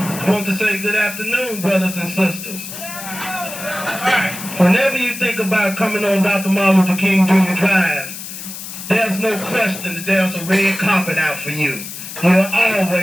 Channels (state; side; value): noise; left; hiss, 10 dB below the sound